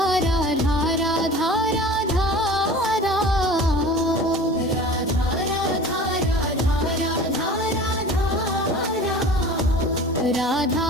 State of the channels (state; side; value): normal; both; correlation 0.40